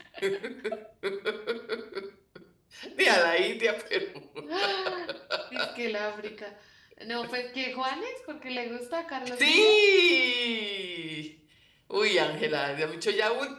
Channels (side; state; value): both; identical; correlation 1.00